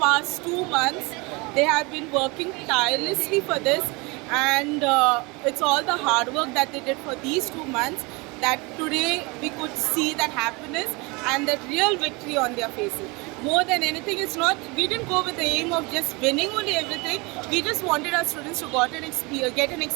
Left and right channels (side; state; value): left; quieter; 26.8 dB